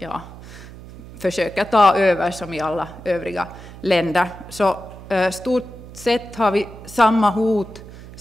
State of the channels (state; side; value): noise; right; hum, 16 dB below the sound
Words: försöker ta över som i alla övriga länder. Så stort sett har vi samma hot,